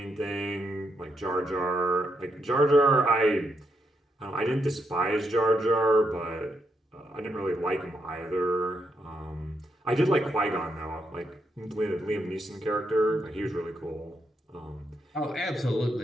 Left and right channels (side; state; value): both; normal; correlation 0.80